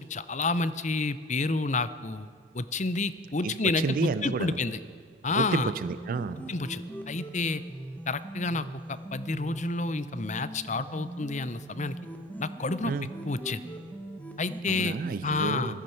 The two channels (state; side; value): normal; both; correlation 0.42